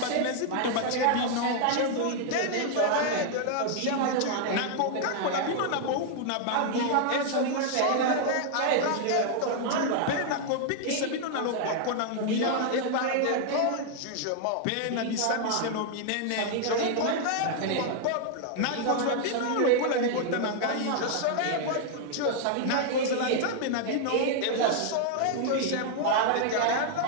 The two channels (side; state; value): both; different; correlation 0.00